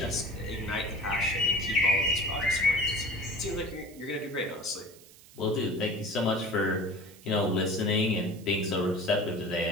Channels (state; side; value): noise; right; hiss, 22 dB below the sound